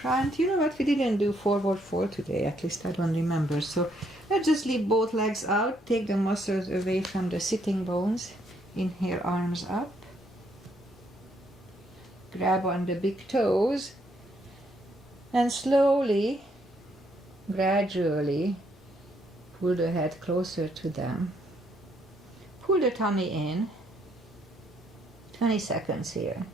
You know what? We didn't do forward fold today. At least I don't remember. So let's just leave both legs out. Take the muscles away from the sitting bones. Inhale, arms up. Grab on the big toes. And slowly, gradually, pull the head closer to them. Pull the tummy in. 20 seconds here.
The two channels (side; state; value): both; normal; correlation 0.72